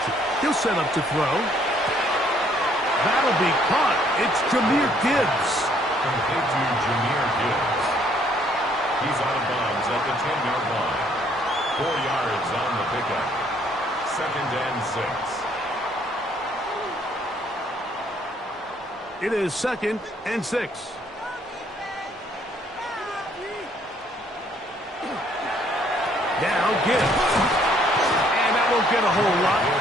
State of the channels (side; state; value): both; normal; correlation 0.65